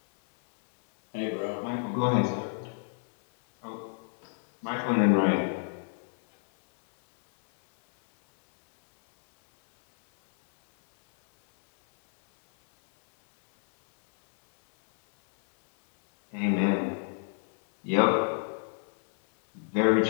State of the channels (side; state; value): right; silent; 59 dB below the other